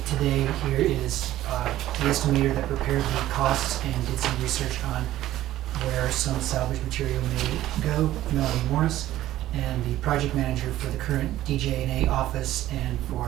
today here is the estimator that prepared the costs and did some research on where some salvage material may go, Melanie Morris, and the project manager for the current DJ&A office and for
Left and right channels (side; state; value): left; quieter; 14.2 dB